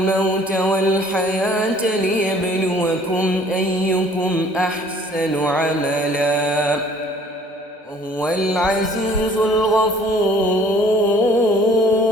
والحياة ليبلوكم أيكم أحسن عملا وهو العزيز الغفور.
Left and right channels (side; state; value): both; normal; correlation 0.54